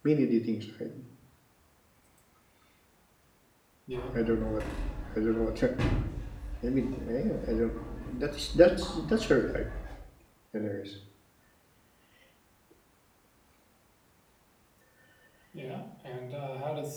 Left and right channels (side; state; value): both; identical; correlation 1.00